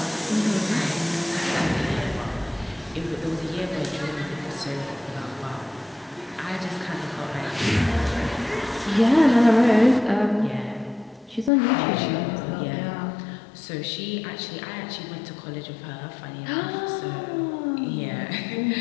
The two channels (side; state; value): right; drops out; at 11.5 s